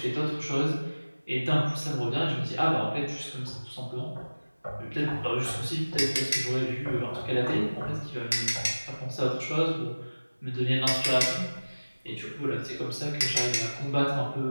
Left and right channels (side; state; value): both; inverted; correlation -1.00